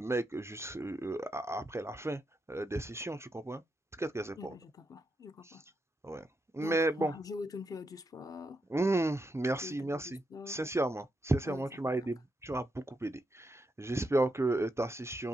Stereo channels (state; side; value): normal; both; correlation 0.83